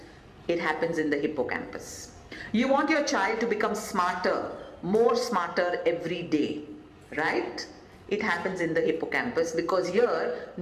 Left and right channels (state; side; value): identical; both; correlation 1.00